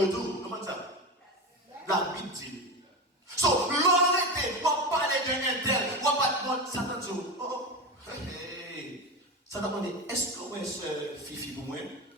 et tout. Comment ça? La Bible dit. So, l'honnêteté, on va parler d'un tel, on va pas de Satan dit, oh, hey. Satan va dire, est-ce que vous êtes ce Fifi pour moi?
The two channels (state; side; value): normal; both; correlation 0.21